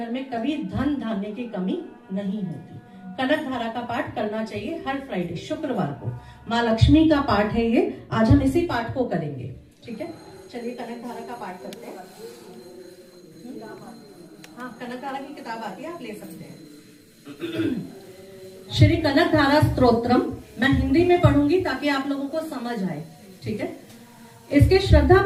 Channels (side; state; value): both; identical; correlation 1.00